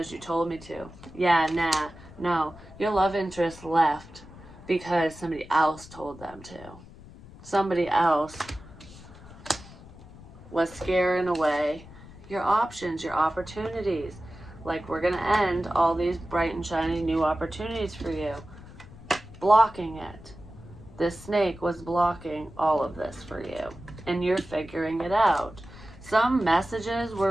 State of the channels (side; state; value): left; noise; rumble, 19 dB below the sound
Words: you told me to. Yeah, nah, no. Your love interest left because somebody else told them to. Somebody else was scaring away your options, your opportunities. Like, we're going to end all these bright and shiny new opportunities for you. Blocking it. This snake was blocking all of this for you, and you're figuring it out. Some messages